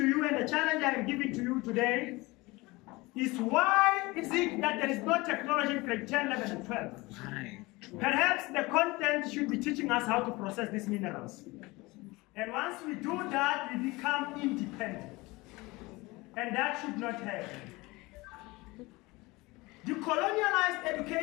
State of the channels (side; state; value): right; quieter; 22.5 dB